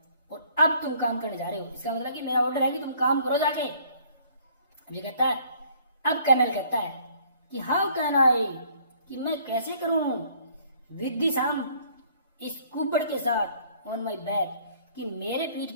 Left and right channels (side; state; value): both; inverted; correlation -0.59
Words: और अब तुम काम करने जा रहे हो, इसका मतलब कि मेरा ऑर्डर है कि तुम काम करो जाके। अब ये कहता है, अब कर्नल कहता है कि हाउ कैन आई, कि मैं कैसे करूं, विद दिस हम, इस कुबड़ के साथ, ऑन माई बैक, कि मेरे पीठ